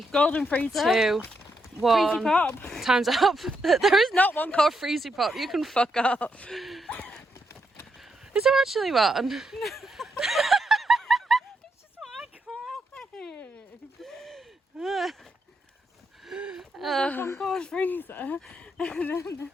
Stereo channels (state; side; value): normal; both; correlation 0.80